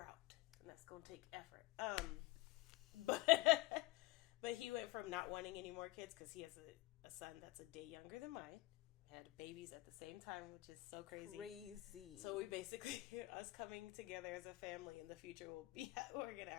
out. And that's going to take effort. But he went from not wanting any more kids because he has a son that's a day younger than mine. Had babies at the same time, which is so crazy. So we basically, us coming together as a family in the future we're going to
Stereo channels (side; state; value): right; quieter; 20.1 dB